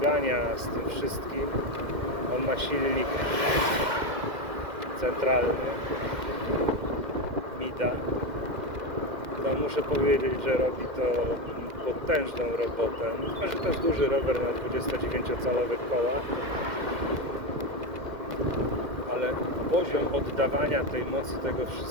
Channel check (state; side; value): late; left; 2.1 ms